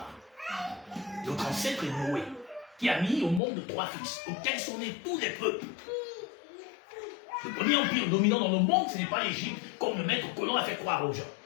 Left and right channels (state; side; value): drops out; right; at 3.4 s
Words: Notre ancêtre est Noé, qui a mis au monde 3 fils, auxquels sont nés tous les peuples. Le premier empire dominant dans le monde, ce n'est pas l'Égypte, comme le maître colon a fait croire aux gens.